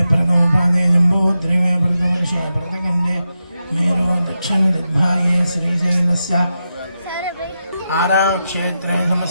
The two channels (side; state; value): both; inverted; correlation -0.88